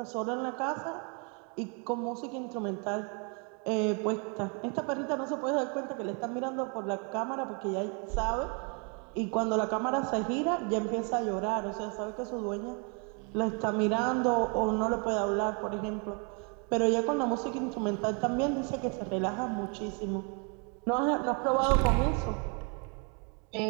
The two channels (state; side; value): quieter; left; 36.1 dB